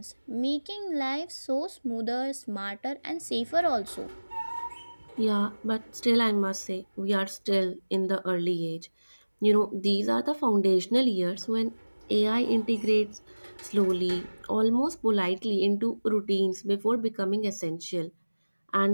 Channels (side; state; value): both; inverted; correlation -1.00